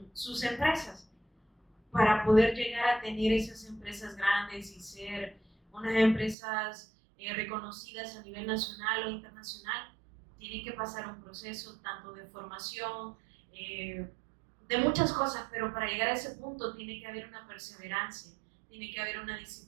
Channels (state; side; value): drops out; left; at 6.4 s